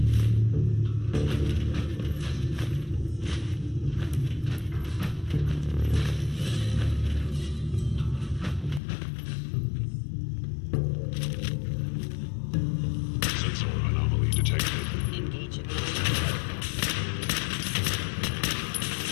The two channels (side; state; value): right; drops out; at 8.8 s